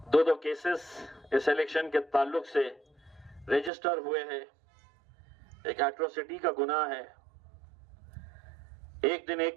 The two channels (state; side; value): drops out; left; at 3.7 s